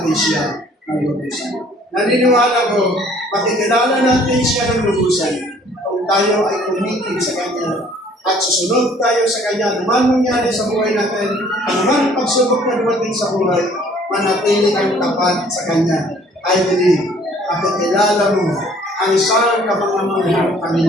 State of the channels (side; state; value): both; normal; correlation 0.57